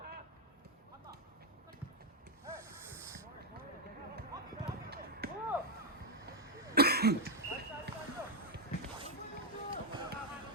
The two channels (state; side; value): normal; both; correlation 0.02